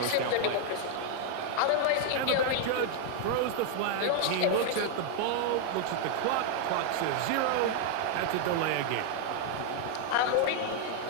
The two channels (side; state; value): both; different; correlation 0.00